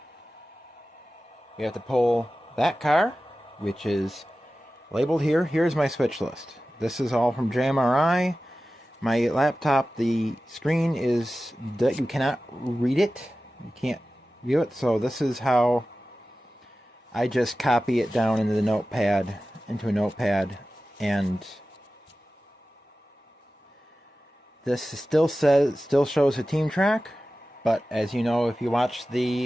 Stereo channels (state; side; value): normal; both; correlation 0.95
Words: We have to pull that car, which is labeled here. Here's my switch list. This is all from JMRI. My laptop, the screen is that you cannot read it. You can't view it. So this is how I just copy it down into a notepad, and this still shows a team track, but as you know, if you watch